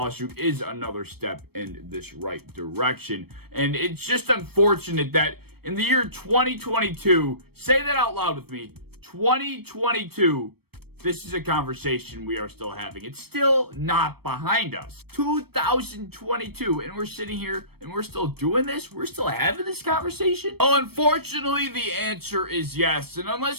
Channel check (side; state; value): left; late; 0.96 ms